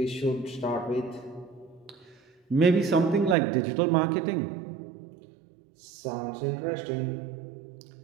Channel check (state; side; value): drops out; left; at 3.4 s